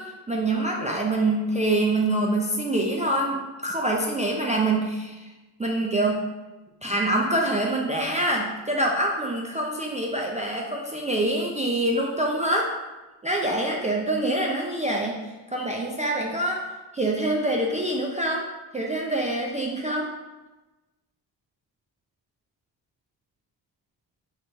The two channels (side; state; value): both; normal; correlation 0.15